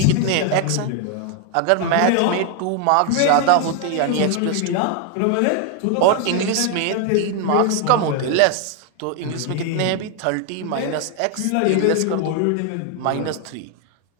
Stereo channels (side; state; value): both; different; correlation 0.00